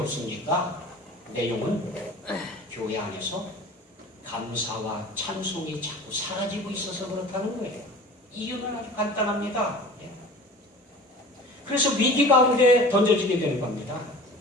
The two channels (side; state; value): both; normal; correlation 0.41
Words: 내용은 교회 안에서 감사와 찬송이 자꾸 사라지고 있어서 그렇다는 거예요. 이유는 아주 간단합니다. 그래서 위기 가운데 던져지게 되는 겁니다.